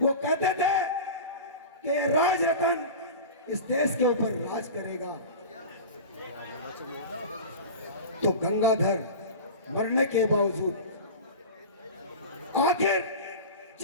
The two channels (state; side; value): inverted; both; correlation -0.30